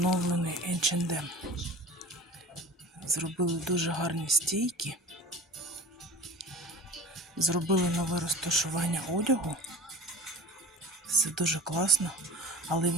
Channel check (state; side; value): normal; both; correlation 0.38